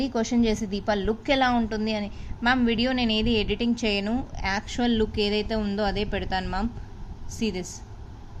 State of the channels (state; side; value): identical; both; correlation 1.00